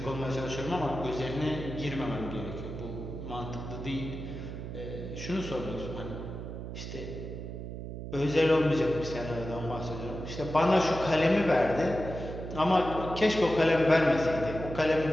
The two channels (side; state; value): right; noise; hum, 8 dB below the sound